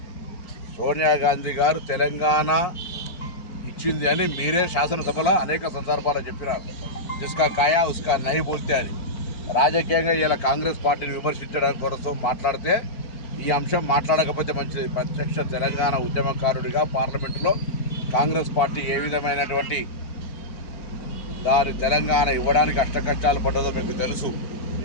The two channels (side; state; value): right; late; 4.4 ms